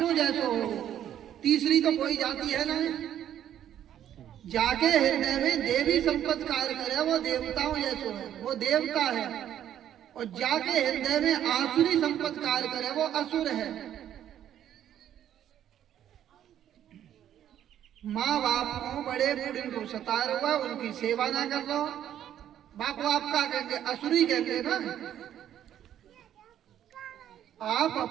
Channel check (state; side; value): quieter; left; 10.7 dB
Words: जैसे हो, तीसरी तो कोई जाति है नहीं। जाके हृदय में देवी संपत्ति कार्य करे वो देवताओं जैसे है, वो देवता है। और जाके हृदय में आसुरी संपत्ति कार्य करे वो असुर है। माँ बाप को बड़े बूढ़े को सता हुआ उनकी सेवा ना कर लो, बाप बाप का कहेंगे, असुरी कहेंगे ना। आप